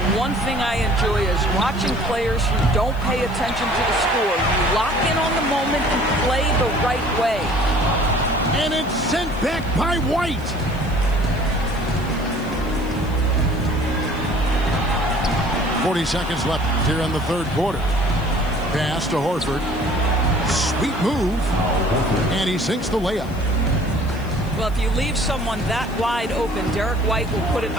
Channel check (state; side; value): noise; left; hiss, 24 dB below the sound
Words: One thing I enjoy is watching players who don't pay attention to the score. You lock in on the moment and play the right way. And it's sent back by White. .40 seconds left here in the third quarter. Pass to Horford. Sweet move. And he sinks the layup. Well, if you leave someone that wide open, Derek White will put it